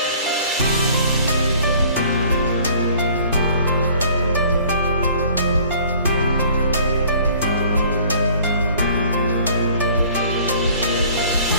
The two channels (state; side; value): inverted; both; correlation -0.53